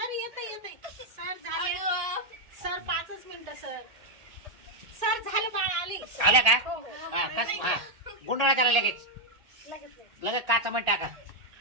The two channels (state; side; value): late; left; 1.8 ms